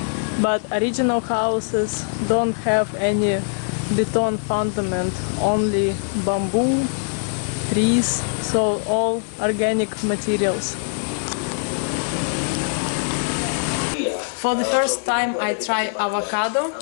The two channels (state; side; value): silent; right; 64 dB below the other